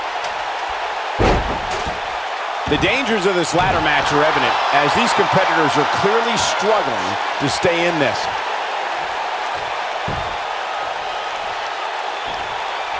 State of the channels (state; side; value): identical; both; correlation 1.00